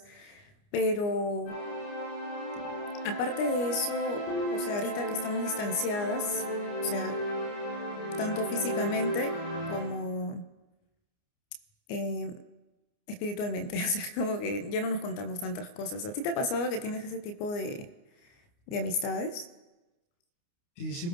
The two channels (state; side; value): late; right; 29 ms